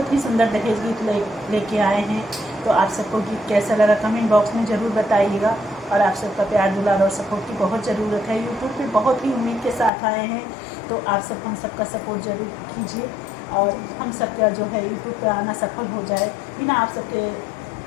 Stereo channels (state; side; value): drops out; right; at 9.9 s